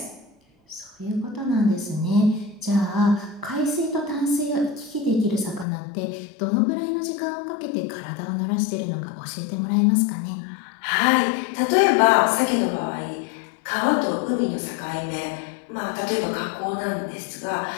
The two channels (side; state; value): right; drops out; at 5.7 s